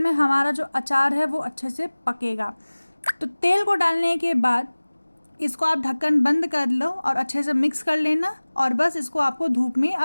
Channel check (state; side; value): inverted; both; correlation -1.00